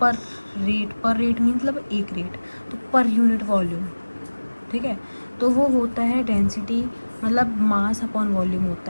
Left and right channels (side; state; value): both; inverted; correlation -1.00